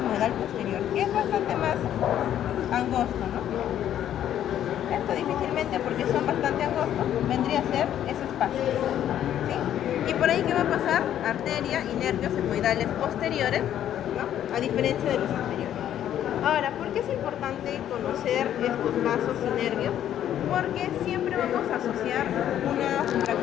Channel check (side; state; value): right; quieter; 10.9 dB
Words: posterior, que es bastante más angosto, ¿no? Esto difícilmente, porque son bastante angostos, vendría a ser ese espacio, ¿sí? Y por ahí, ¿qué va a pasar? Arteria y nervios etmoidales posteriores, ¿no? A diferencia de los anteriores. Ahora, ¿por qué es importante conocer estos vasos y nervios? Porque siempre vamos a asociar una